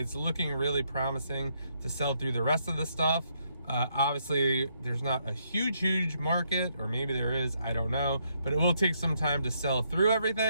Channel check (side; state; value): both; inverted; correlation -0.75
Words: looking really promising to sell through the rest of the stuff. Obviously, there's not a huge market, or maybe there is, I don't know, but it will take some time to sell through